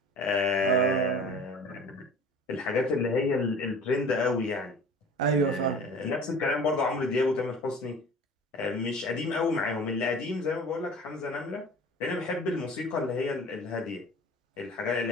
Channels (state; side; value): normal; both; correlation 0.43